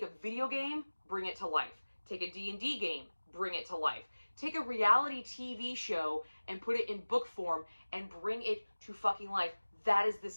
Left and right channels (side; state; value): both; inverted; correlation -1.00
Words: a video game, bring it to life. Take a D&D game, bring it to life. Take a reality TV show and put it in book form and bring it to fucking life. That is this